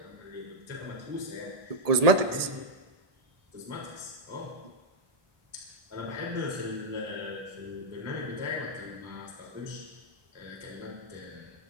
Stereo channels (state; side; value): late; left; 1.7 ms